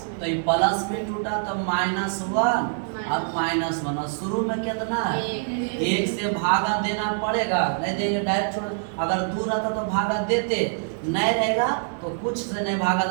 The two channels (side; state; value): left; silent; digital silence